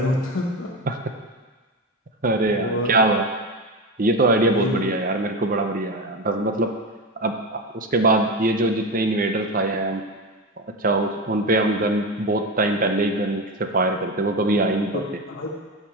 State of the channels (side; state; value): both; normal; correlation 0.19